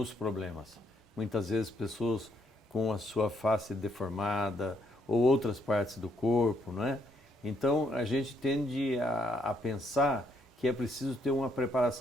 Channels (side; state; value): both; normal; correlation 0.73